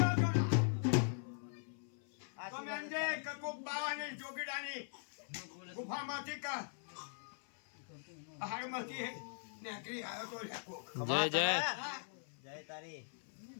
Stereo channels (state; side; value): silent; right; 51 dB below the other